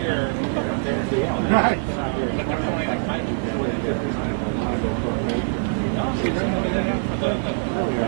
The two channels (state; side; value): silent; left; digital silence